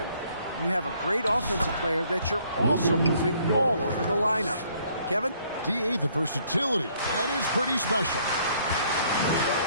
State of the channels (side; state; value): both; inverted; correlation -0.64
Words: You have a great offensive player that you're also moving all over the lineup." Kevin? DA, the versatility. That is pretty special.